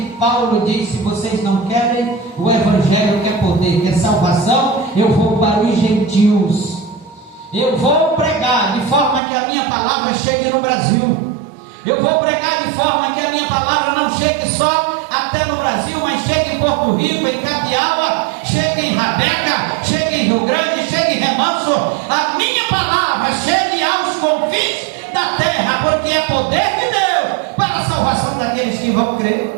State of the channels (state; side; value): drops out; left; at 9.2 s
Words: Paulo diz: se vocês não querem o evangelho, quer poder, quer salvação, eu vou para os gentios. Eu vou pregar de forma que a minha palavra chegue no Brasil. Eu vou pregar de forma que a minha palavra não chegue só até no Brasil, mas chegue em Porto Rico, em Capiaua, chegue em Rabeca, chegue em Rio Grande, chegue em Remanso. A minha palavra chegue aos confins da terra, porque é poder de Deus para a salvação daqueles que vão crer.